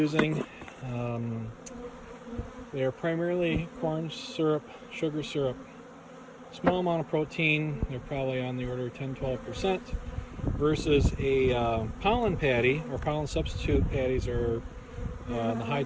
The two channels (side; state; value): both; identical; correlation 1.00